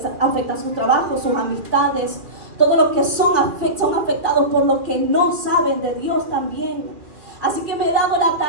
afecta su trabajo, sus amistades. Todo lo que son afectados por lo que no saben de Dios también. Así que me he dado la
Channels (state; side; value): late; left; 2.4 ms